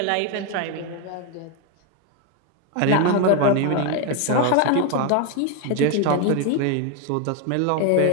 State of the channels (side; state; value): both; different; correlation 0.01